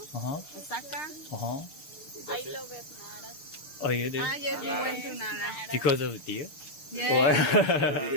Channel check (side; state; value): right; late; 6.6 ms